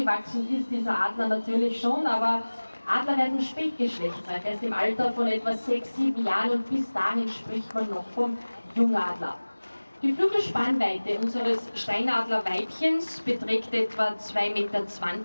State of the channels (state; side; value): inverted; both; correlation -1.00